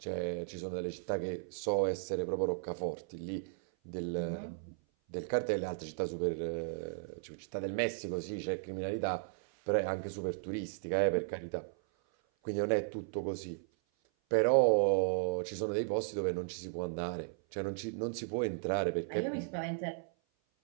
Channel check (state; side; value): silent; left; 54 dB below the other